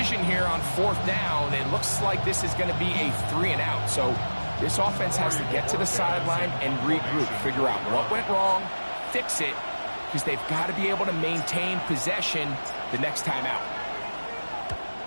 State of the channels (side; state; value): both; inverted; correlation -1.00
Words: here on fourth down, it looks like this is going to be a 3-and-out. So this offense has to get to the sideline and regroup, figure out what went wrong, fix it, because they've got to be able to maintain possession the next time out.